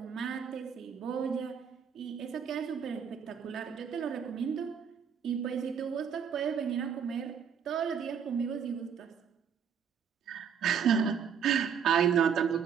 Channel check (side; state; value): left; quieter; 7.4 dB